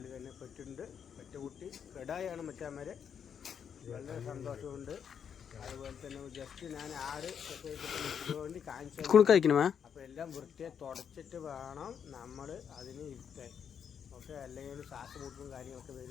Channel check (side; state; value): right; quieter; 7.7 dB